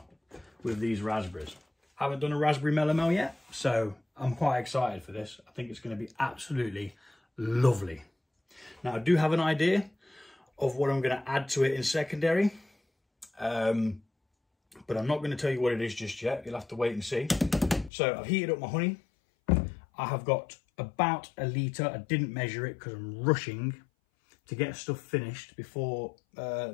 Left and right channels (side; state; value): right; drops out; at 17.9 s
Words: with these raspberries. I haven't done a raspberry melomel yet, so I'm quite excited for this. I think it's going to be absolutely lovely. Now I do have an idea of what I'm going to add to it in secondary, but I'm not going to tell you what it is just yet. You'll have to wait and see. So I've heated up my honey. I have got about a litre. I didn't measure it because I'm rushing to get stuff finished before